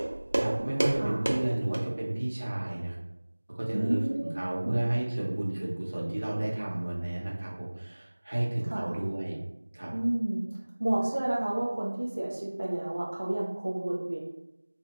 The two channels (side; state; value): both; inverted; correlation -1.00